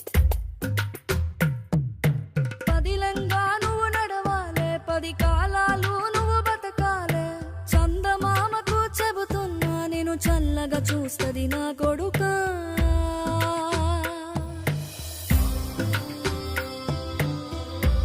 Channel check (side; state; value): both; identical; correlation 1.00